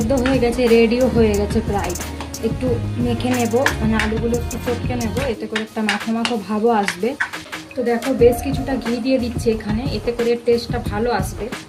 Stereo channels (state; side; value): identical; both; correlation 1.00